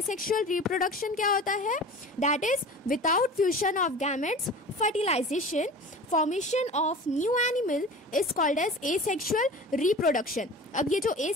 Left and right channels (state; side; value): normal; both; correlation 0.37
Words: रिप्रोडक्शन क्या होता है. That is without fusion of gametes fertilization formation of new animal is called as asexual reproduction. अब ये जो